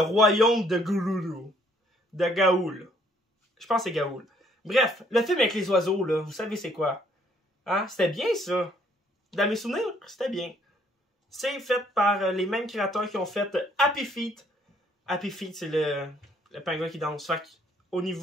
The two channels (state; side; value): normal; both; correlation 0.65